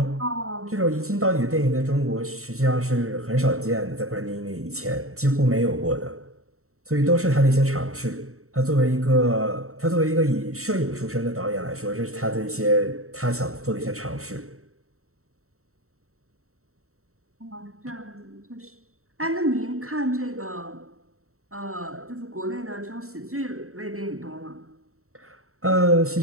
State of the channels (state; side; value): late; left; 0.64 ms